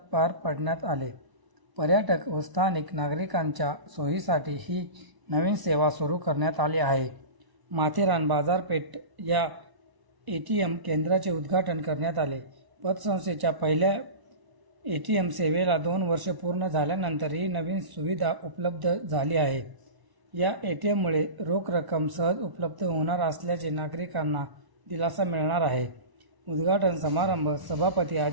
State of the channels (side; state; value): left; late; 1.0 ms